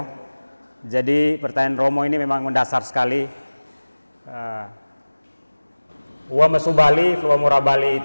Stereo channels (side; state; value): both; inverted; correlation -1.00